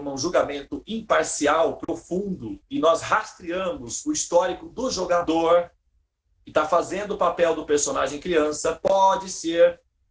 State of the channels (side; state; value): both; identical; correlation 1.00